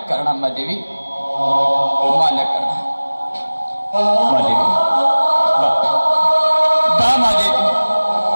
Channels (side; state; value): both; inverted; correlation -1.00